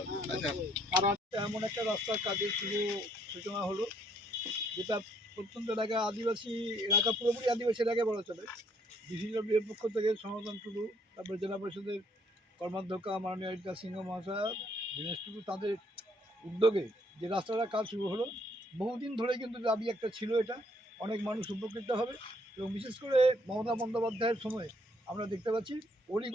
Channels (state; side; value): normal; both; correlation 0.67